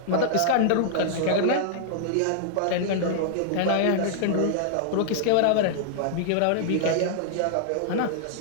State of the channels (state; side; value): different; both; correlation -0.01